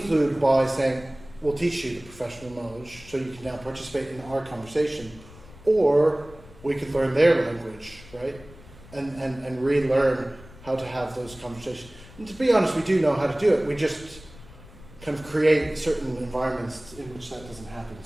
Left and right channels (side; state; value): left; noise; rumble, 20 dB below the sound